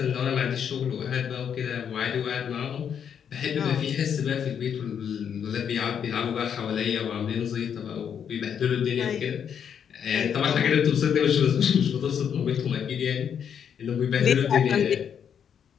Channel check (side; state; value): right; quieter; 8.1 dB